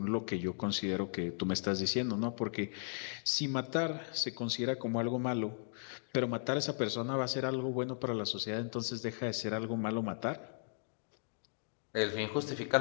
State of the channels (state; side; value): silent; right; digital silence